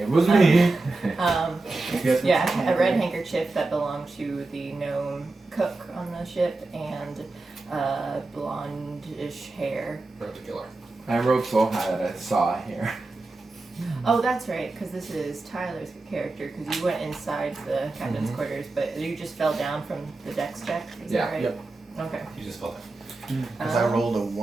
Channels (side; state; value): left; quieter; 3.2 dB